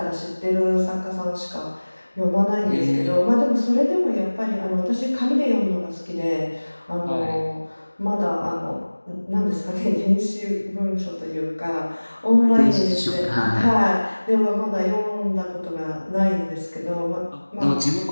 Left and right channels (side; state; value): both; inverted; correlation -1.00